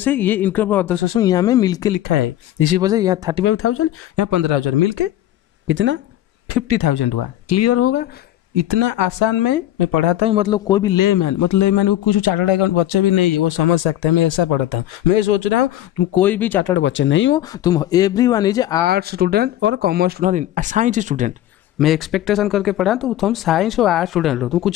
ये इनकम ऑफ अदर सोर्स में यहाँ में मिलके लिखा है। इसी वजह से यहाँ 35,000 यहाँ 15,000 मिलके कितना 50,000 हुआ। क्लियर होगा, इतना आसान में मैं पढ़ाता हूँ, मतलब कोई भी लेमैन, मतलब लेमैन वो कुछ चार्टर्ड अकाउंट बच्चे भी नहीं है वो समझ सकते हैं, मैं ऐसा पढ़ाता हूँ। मैं सोच रहा हूँ तुम कोई भी चार्टर्ड बच्चे नहीं हो, तुम एवरीवन इज आर्ट्स स्टूडेंट और कॉमर्स स्टूडेंट, साइंस स्टूडेंट। मैं एक्सपेक्टेशन करके पढ़ा तो तुम साइंस और आर्ट्स स्टूडेंट हो, तुम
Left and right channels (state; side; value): quieter; right; 13.2 dB